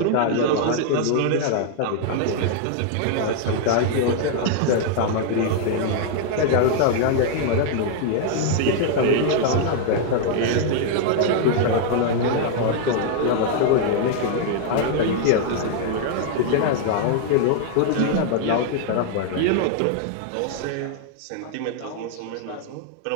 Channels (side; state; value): both; different; correlation 0.00